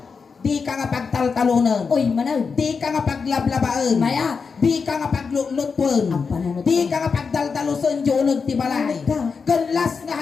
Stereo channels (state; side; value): quieter; right; 5.3 dB